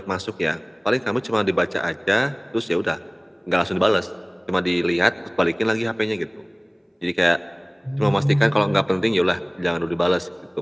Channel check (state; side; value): identical; both; correlation 1.00